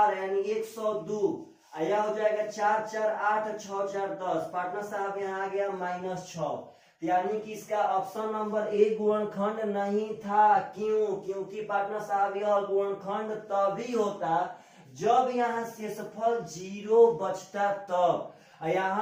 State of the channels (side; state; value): both; identical; correlation 1.00